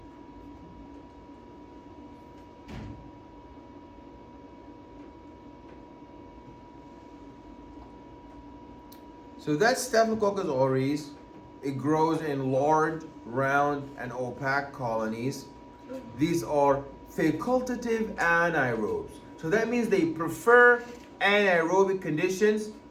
So that's Staphylococcus aureus. It grows in large, round, and opaque colonies. These are facultative anaerobes. So that means they prefer anaerobic conditions.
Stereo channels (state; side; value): identical; both; correlation 1.00